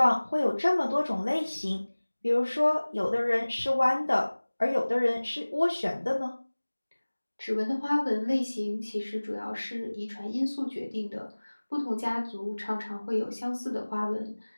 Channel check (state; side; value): inverted; both; correlation -1.00